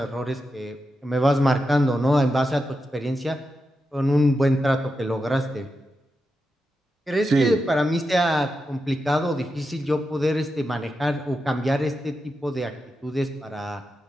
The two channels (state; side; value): normal; both; correlation 0.88